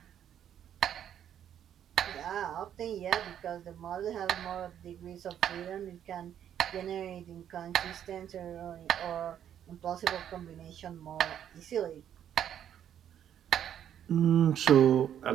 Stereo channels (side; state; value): left; quieter; 9.8 dB